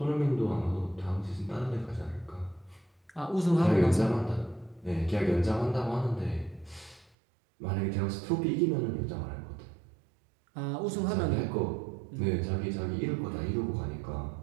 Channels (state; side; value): drops out; left; at 7.1 s